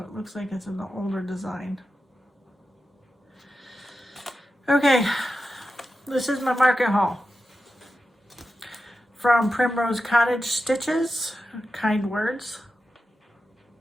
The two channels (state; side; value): normal; both; correlation 0.91